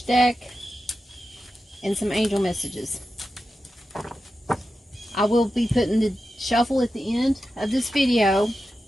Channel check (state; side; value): normal; both; correlation 0.91